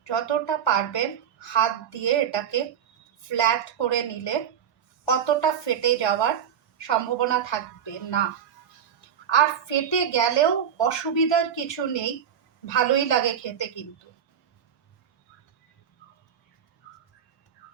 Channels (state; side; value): quieter; left; 8.5 dB